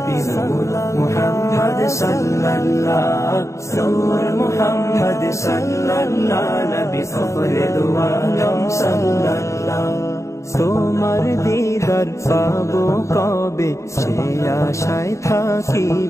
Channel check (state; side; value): late; right; 0.14 ms